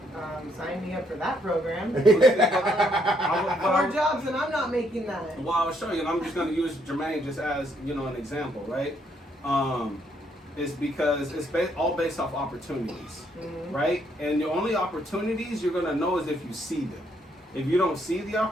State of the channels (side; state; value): both; normal; correlation 0.71